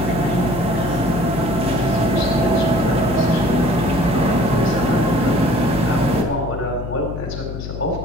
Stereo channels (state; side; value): noise; left; hum, 8 dB below the sound